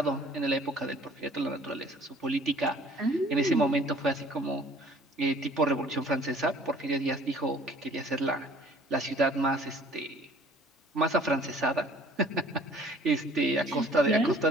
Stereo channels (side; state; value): both; normal; correlation 0.53